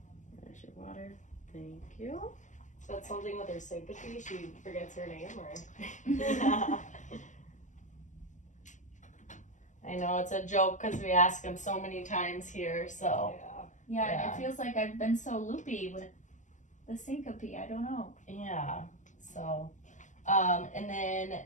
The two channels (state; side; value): late; right; 0.36 ms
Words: There's your water. Thank you. Is that something with her syncope? She forgets her name, or? I know it's a joke because we ask them so many times here. So Yeah, Yeah. it feels like I've been so loopy with the syncope. I don't know. yeah. So, and then